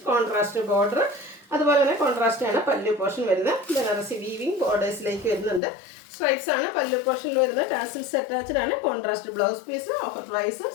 contrast border, അതുപോലെ തന്നെ കോൺട്രാസ്റ്റ് ആണ് പല്ലു പോർഷൻ വരുന്നത്. ബനാറസി വീവിങ് ബോർഡേഴ്സിലേക്ക് വരുന്നുണ്ട്. സ്ട്രൈപ്സ് ആണ് പല്ലു പോർഷനിൽ വരുന്നത്. ടാസിൽസ് അറ്റാച്ച്ഡ് ആണ്. Contrast blouse piece. Offer price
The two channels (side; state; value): right; drops out; at 5.6 s